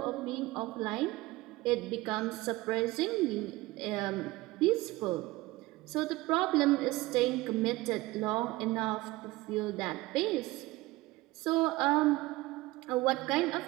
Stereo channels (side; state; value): left; quieter; 19.9 dB